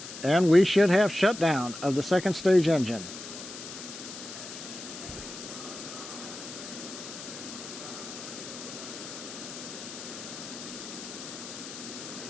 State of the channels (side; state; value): left; noise; hiss, 11 dB below the sound